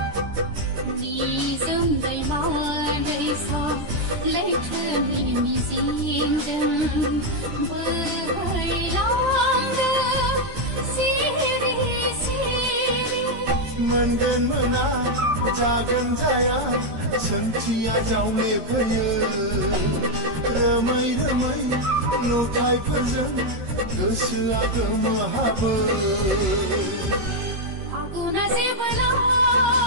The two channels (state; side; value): late; left; 13 ms